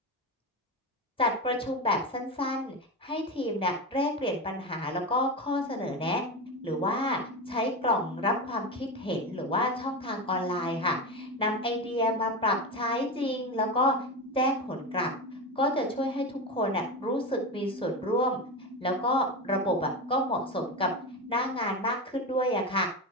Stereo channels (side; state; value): both; normal; correlation 0.20